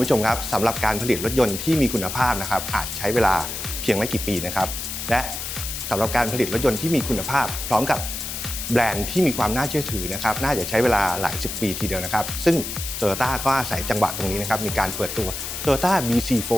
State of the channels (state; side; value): noise; left; hiss, 6 dB below the sound